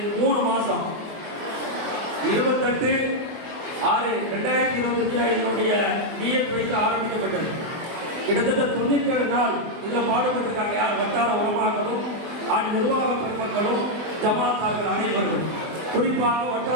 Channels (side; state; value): left; late; 24 ms